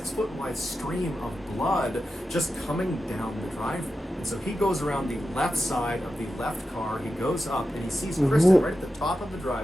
wide stream of blood just coming down the driveway. And so he goes around the left side of the left car, he goes up and he sees Kristen right at the top of the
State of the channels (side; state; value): both; normal; correlation 0.91